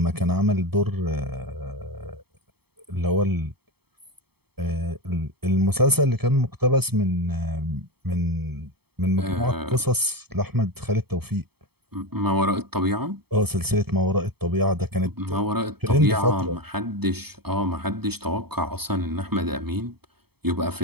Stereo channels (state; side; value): late; left; 0.97 ms